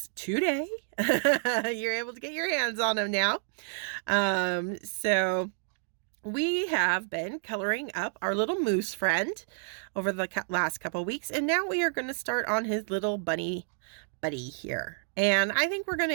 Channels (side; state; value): left; silent; digital silence